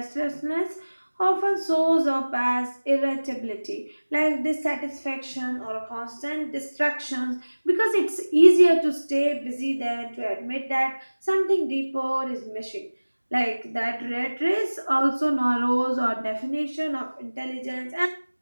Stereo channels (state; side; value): inverted; both; correlation -1.00